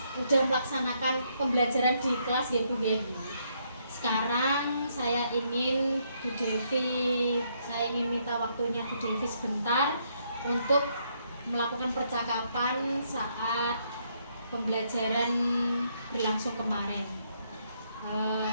melaksanakan pembelajaran di kelas ya Bu ya. Sekarang saya ingin minta waktunya Bu Devi sebentar untuk melakukan percakapan saat pembelajaran berlangsung kemarin.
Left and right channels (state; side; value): inverted; both; correlation -0.73